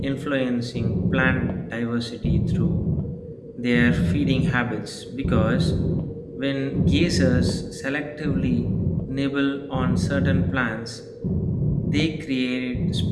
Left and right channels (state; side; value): identical; both; correlation 1.00